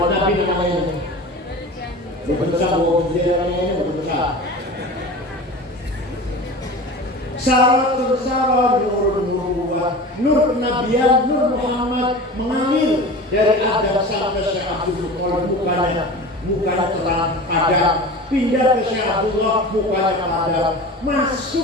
namanya berbesar, Saratun sarah nur nubuwah, nur kenabian, nur Muhammad mengalir dari Adam sampai Syekh Abdul Muthalib, mukanya terang padam, pindah ke Syekh Abdullah, mukanya padam,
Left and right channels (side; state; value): both; normal; correlation 0.34